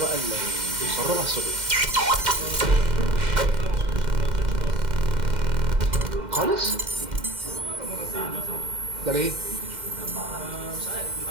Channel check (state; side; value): late; left; 2.1 ms